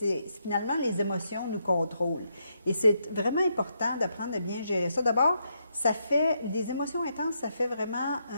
Finalement, les émotions nous contrôlent. Et c'est vraiment important d'apprendre à bien gérer ça. D'abord, des émotions intenses, ça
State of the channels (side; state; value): both; inverted; correlation -0.79